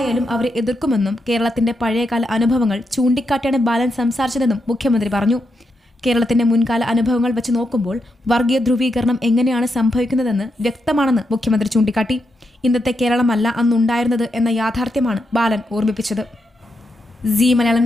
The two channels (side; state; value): both; normal; correlation 0.83